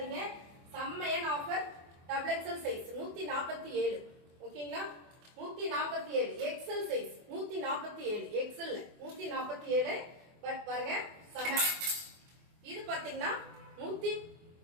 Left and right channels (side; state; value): left; late; 24 ms